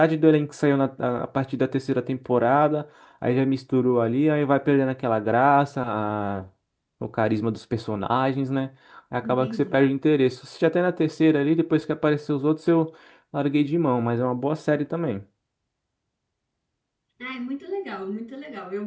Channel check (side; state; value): both; identical; correlation 1.00